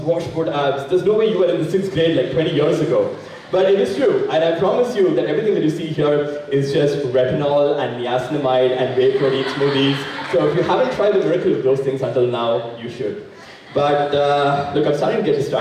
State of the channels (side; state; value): both; identical; correlation 1.00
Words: abs. There's no way you were in the 6th grade like 20 years ago. But it is true, and I promise you that everything that you see here is just retinol and niacinamide and whey protein smoothies. So if you haven't tried the miracle of those things until now, you should. But look, I'm starting to get